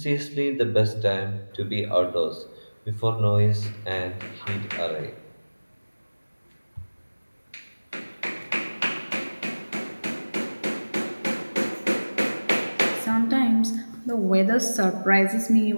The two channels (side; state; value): both; inverted; correlation -1.00